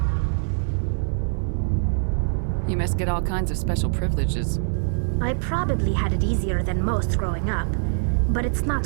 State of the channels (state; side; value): silent; left; digital silence